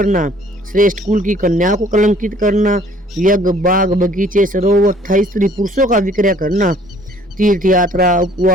श्रेष्ठ कुल की कन्या को कलंकित करना, यज्ञ, बाग, बगीचे, सरोवर तथा स्त्री पुरुषों का विक्रय करना, तीर्थ यात्रा,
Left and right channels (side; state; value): both; normal; correlation 0.57